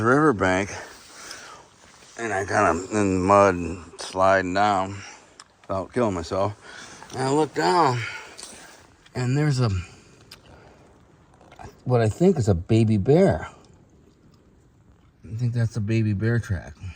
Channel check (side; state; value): both; identical; correlation 1.00